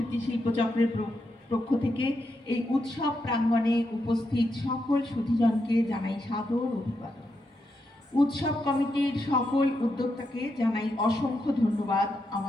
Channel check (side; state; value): both; normal; correlation 0.83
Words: শিল্পচক্রের পক্ষ থেকে এই উৎসব প্রাঙ্গণে উপস্থিত সকল সুধীজনকে জানাই সাদর অভিবাদন। উৎসব কমিটির সকল উদ্যোক্তাকে জানাই অসংখ্য ধন্যবাদ